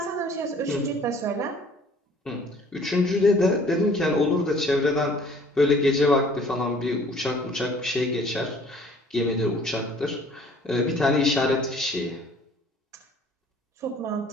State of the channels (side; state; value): both; normal; correlation 0.54